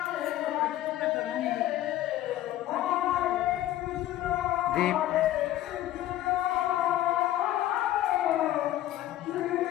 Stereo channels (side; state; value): right; quieter; 13.9 dB